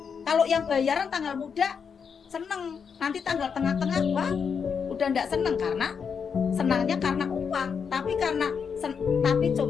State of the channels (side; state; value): right; quieter; 6.4 dB